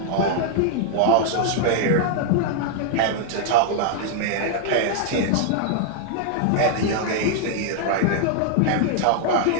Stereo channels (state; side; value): different; both; correlation 0.00